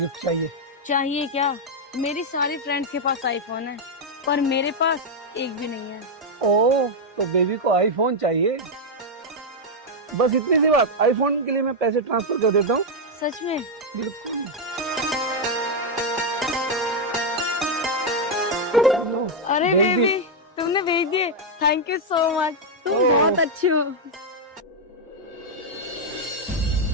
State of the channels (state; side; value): normal; both; correlation 0.00